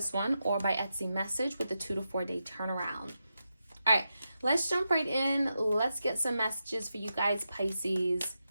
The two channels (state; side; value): inverted; both; correlation -0.88